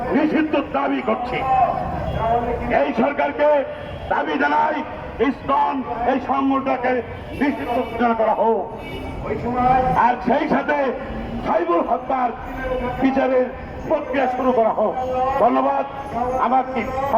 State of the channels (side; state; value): both; identical; correlation 1.00